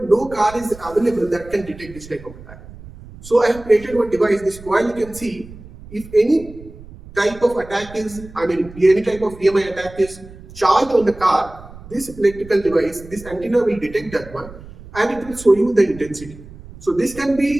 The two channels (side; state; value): right; noise; rumble, 17 dB below the sound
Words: car is available that can detect this type of attack. So I have created one device. This coil you can see, if any type of attack is, any type of EMI attack is charged on the car, this electrical device, this antenna will detect that one, and it will show you the intensity. So this can